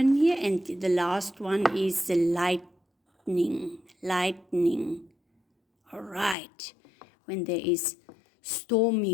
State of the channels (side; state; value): right; drops out; at 6.4 s